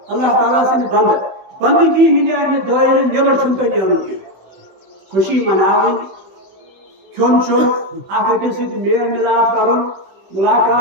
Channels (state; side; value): late; left; 16 ms